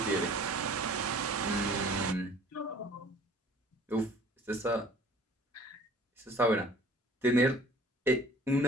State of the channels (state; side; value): normal; both; correlation 0.51